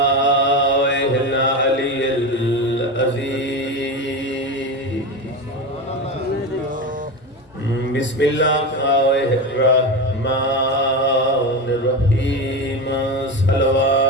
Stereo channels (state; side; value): normal; both; correlation 0.20